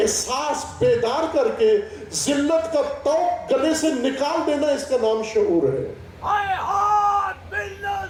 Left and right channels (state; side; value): identical; both; correlation 1.00